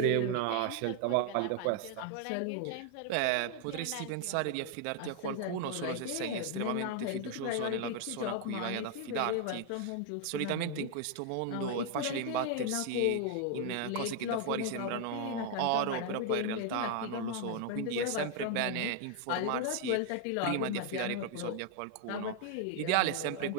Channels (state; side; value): different; both; correlation 0.00